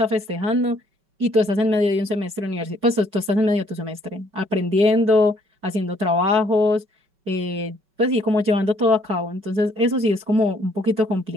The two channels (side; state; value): left; late; 5.2 ms